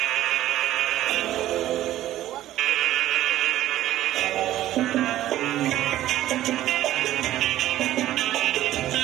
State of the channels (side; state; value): left; quieter; 13.8 dB